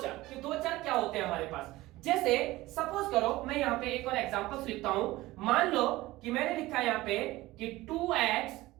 चर, कि दो चर क्या होते हैं हमारे पास। जैसे सपोज करो मैं यहां पे एक और एग्जांपल्स लिखता हूं। मान लो कि मैंने लिखा है यहां पे कि 2x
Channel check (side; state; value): left; quieter; 18.3 dB